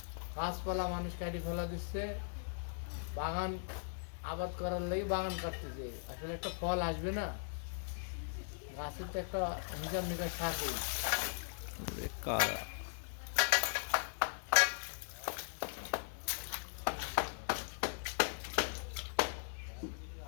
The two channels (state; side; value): silent; right; digital silence